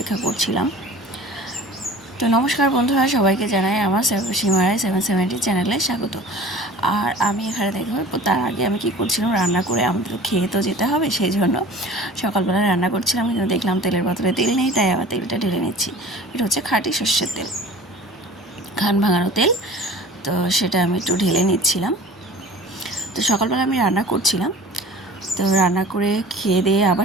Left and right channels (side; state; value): both; normal; correlation 0.43